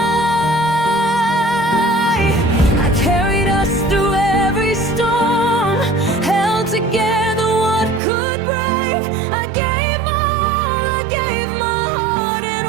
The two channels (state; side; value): drops out; left; at 8.0 s